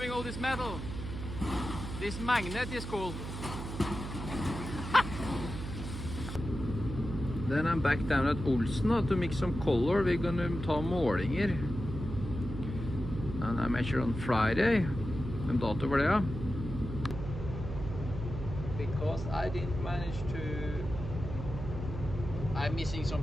all this metal. This magnet is cool. Then I'm back down at Paulsen now to mix some color. We're gonna ta målinger. And I measure on Friday. En dato for det, ja. Because I didn't manage to... I'm missing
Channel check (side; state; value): right; noise; hum, 7 dB below the sound